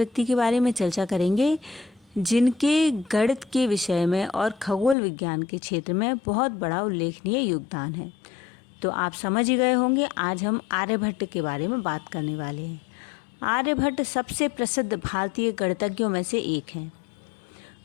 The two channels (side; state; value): right; drops out; at 5.0 s